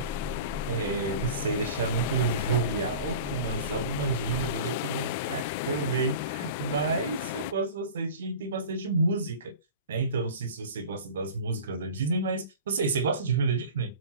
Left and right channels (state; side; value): inverted; both; correlation -0.37